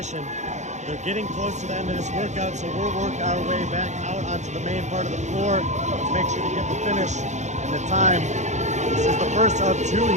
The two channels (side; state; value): left; late; 0.34 ms